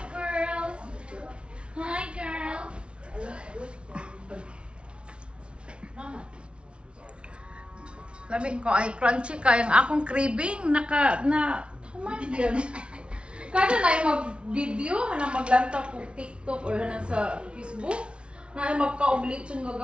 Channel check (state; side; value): late; left; 0.058 ms